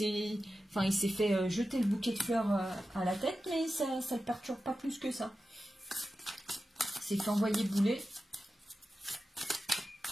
fait jeter le bouquet de fleurs à la tête, mais ça ne le perturbe pas plus que ça. C'est fait envoyer bouler.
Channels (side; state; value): both; normal; correlation 0.92